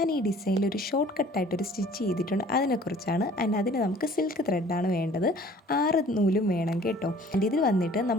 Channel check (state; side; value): normal; both; correlation 0.52